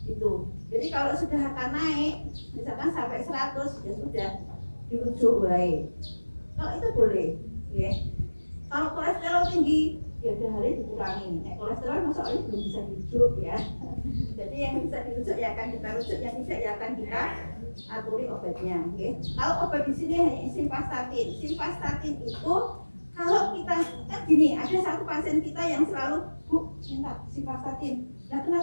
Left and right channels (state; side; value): inverted; both; correlation -1.00